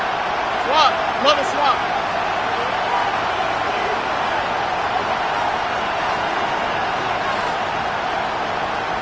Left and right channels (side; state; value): both; identical; correlation 1.00